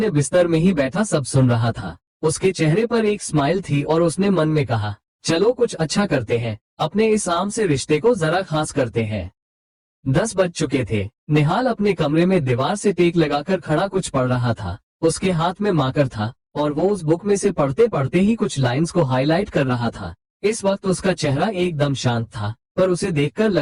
बिस्तर में ही बैठा सब सुन रहा था। उसके चेहरे पर एक स्माइल थी और उसने मन में कहा, चलो कुछ अच्छा करते हैं, अपने इस आम से रिश्ते को जरा खास करते हैं। 10 बज चुके थे। निहाल अपने कमरे में दीवार से टेक लगाकर खड़ा कुछ पढ़ रहा था। उसके हाथ में मार्कर था और वो उस बुक में से पढ़ते पढ़ते ही कुछ लाइंस को हाईलाइट कर रहा था। इस वक्त उसका चेहरा एकदम शांत था, पर उसे देखकर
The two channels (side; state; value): both; identical; correlation 1.00